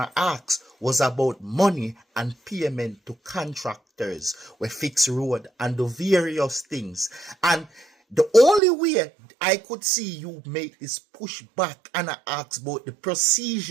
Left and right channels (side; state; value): left; drops out; at 8.6 s